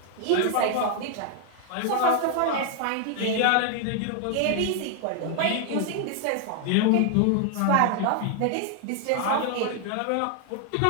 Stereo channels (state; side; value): different; both; correlation 0.00